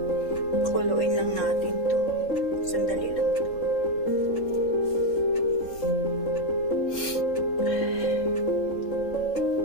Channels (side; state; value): right; late; 3.8 ms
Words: Kuluin lang natin to. Sandali lang to.